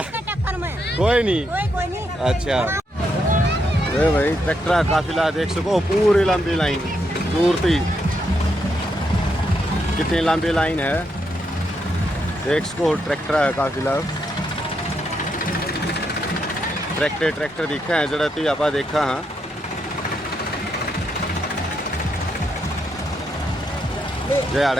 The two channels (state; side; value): normal; both; correlation 0.80